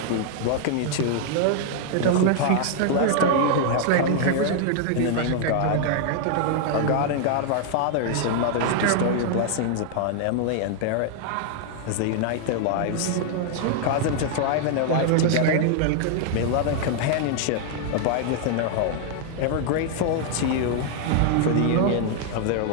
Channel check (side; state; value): both; different; correlation 0.00